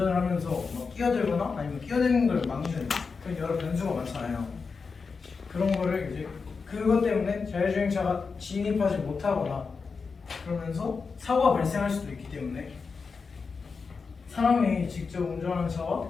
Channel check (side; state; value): right; quieter; 5.0 dB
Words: 하면서 뭐 끼어들거나 아니면 끼어드는 걸 막는 그런 여러 변수가 많잖아요. 그런 거를 이제 그것 때문에 자율주행차가 진입하지 못하거나 그러면서 사고가 발생할 수도 있기 때문에 사람이 직접 운전하는 차와